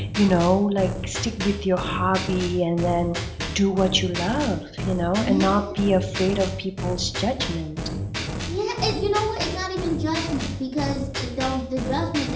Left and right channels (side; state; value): both; identical; correlation 1.00